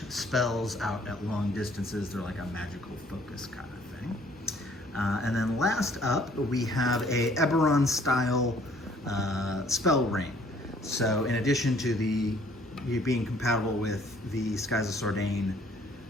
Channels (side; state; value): both; normal; correlation 0.59